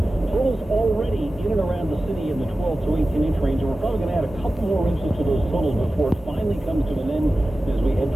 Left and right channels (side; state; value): both; normal; correlation 0.95